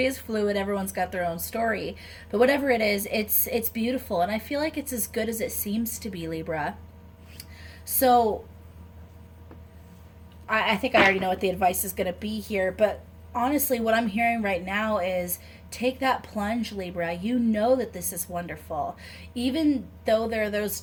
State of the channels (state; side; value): identical; both; correlation 1.00